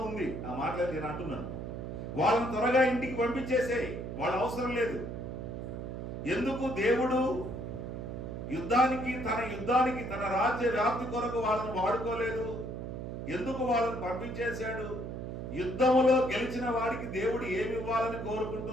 ఉంది. ఆ మాటలు నేను అంటున్నాను. వాళ్ళని త్వరగా ఇంటికి పంపించేసేయి, వాళ్ళ అవసరం లేదు. ఎందుకు దేవుడు యుద్ధానికి తన రాజ్య వ్యాప్తి కొరకు వాళ్ళని వాడుకోలేదు? ఎందుకు వాళ్ళని పంపించేశాడు? యుద్ధములో గెలిచిన వాడికి దేవుడు ఏమి ఇవ్వాలని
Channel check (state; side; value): noise; right; hum, 6 dB below the sound